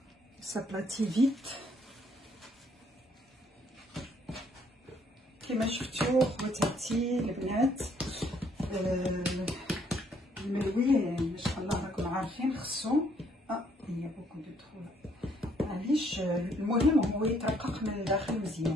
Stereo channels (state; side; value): normal; both; correlation 0.67